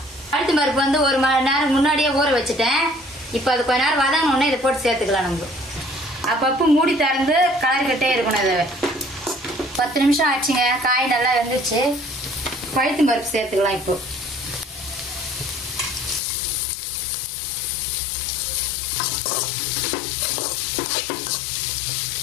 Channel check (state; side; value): drops out; right; at 16.2 s